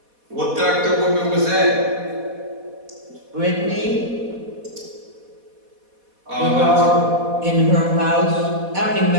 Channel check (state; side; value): late; left; 4.1 ms